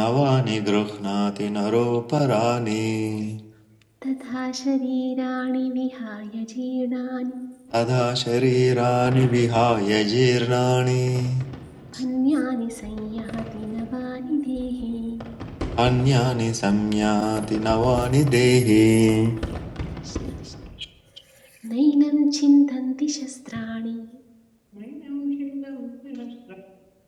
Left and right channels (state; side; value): identical; both; correlation 1.00